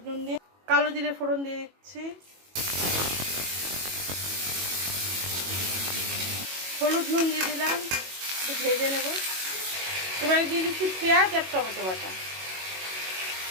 নুন দিয়ে, কালো জিরে ফোড়ন দিয়ে দিচ্ছি, হলুদ নুন দিয়ে দিলাম, একটু ভেজে নেব। এবারে দিয়ে দিচ্ছি পেঁয়াজ আর টমেটো বাটা,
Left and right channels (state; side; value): late; left; 22 ms